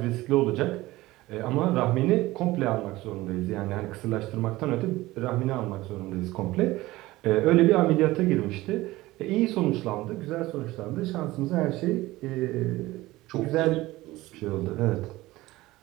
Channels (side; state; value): left; quieter; 18.4 dB